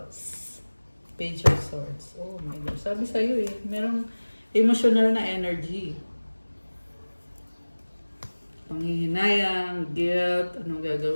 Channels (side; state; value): both; inverted; correlation -1.00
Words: Page of Swords. Oh my gosh. Sabi sa'yo merong emotional na energy. Panghihinayang, guilt, anong